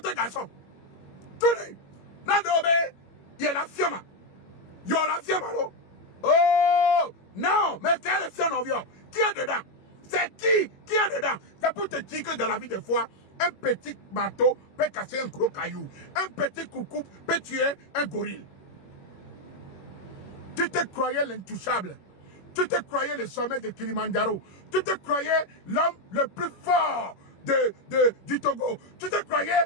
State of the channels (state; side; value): late; right; 21 ms